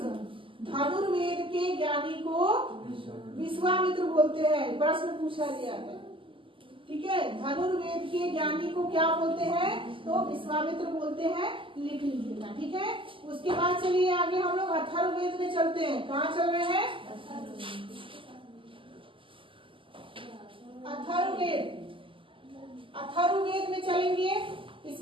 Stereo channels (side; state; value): left; late; 0.25 ms